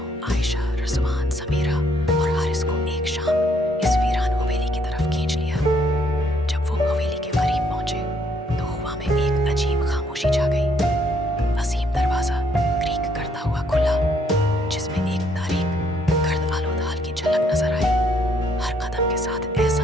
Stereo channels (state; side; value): normal; both; correlation 0.68